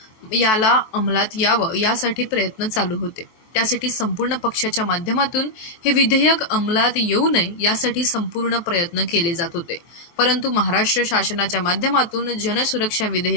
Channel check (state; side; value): late; right; 24 ms